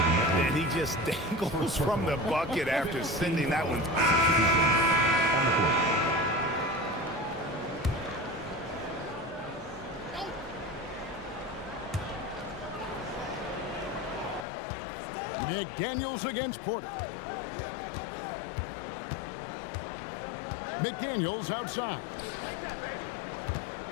And he just dangles from the bucket after sending that one. McDaniels against Porter. McDaniels outside.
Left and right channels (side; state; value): right; drops out; at 14.5 s